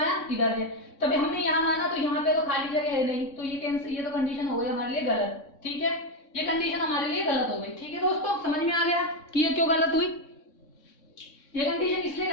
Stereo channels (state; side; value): late; right; 3.6 ms